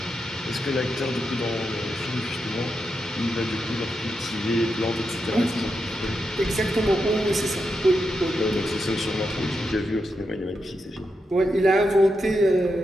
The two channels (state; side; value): normal; both; correlation 0.86